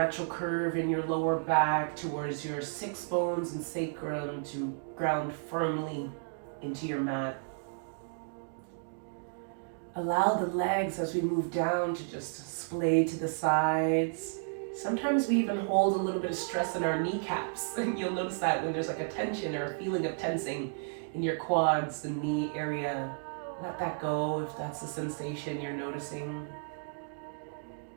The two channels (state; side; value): silent; left; digital silence